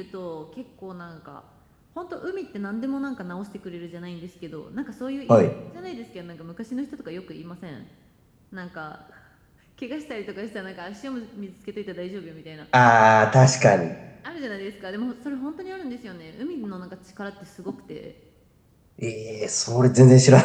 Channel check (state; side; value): identical; both; correlation 1.00